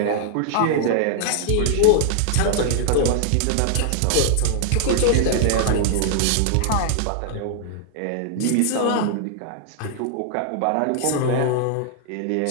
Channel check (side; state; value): both; different; correlation -0.01